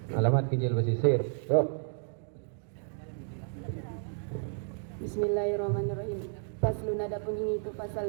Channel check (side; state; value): left; silent; digital silence